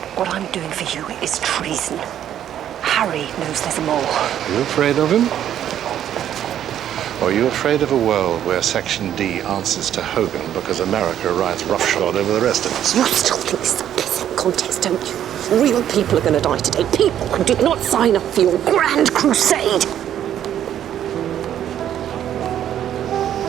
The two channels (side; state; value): left; quieter; 10.6 dB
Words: What I'm doing for you is treason. Harry knows there's more. Are you afraid of him? Or are you afraid of a world where Section D answers to Hogan because America rides roughshod over the rest of us? You still think this is a pissing contest, don't you? Real people are going to die today. People who did not sign up for your grand crusade.